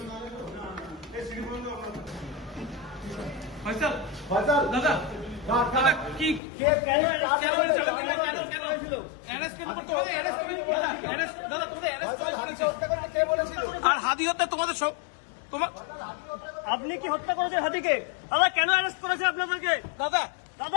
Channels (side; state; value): right; drops out; at 6.4 s